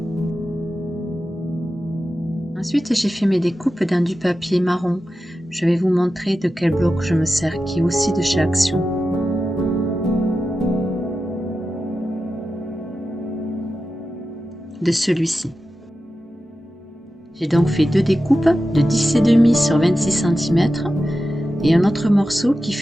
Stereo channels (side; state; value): both; normal; correlation 0.92